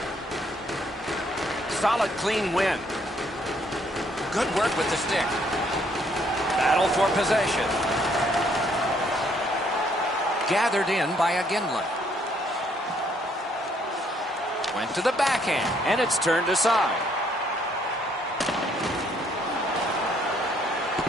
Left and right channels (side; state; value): both; normal; correlation 0.67